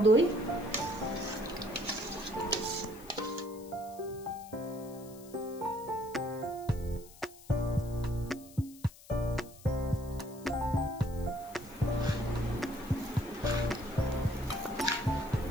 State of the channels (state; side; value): noise; left; hiss, 20 dB below the sound